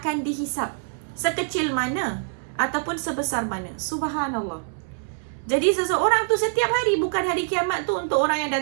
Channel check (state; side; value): silent; left; 62 dB below the other